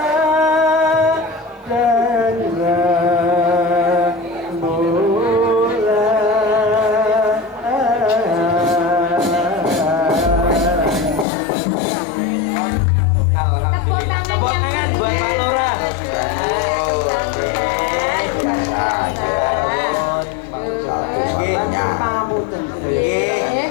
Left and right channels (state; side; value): drops out; right; at 11.2 s